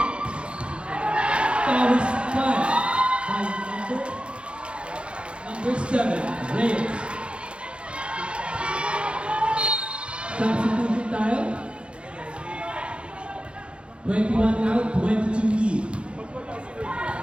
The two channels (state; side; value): late; left; 0.058 ms